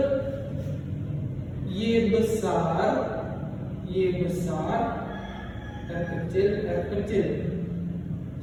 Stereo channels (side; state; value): both; identical; correlation 1.00